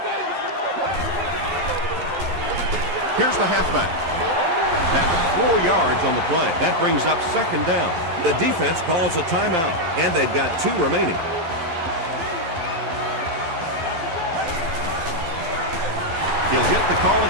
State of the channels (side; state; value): left; late; 12 ms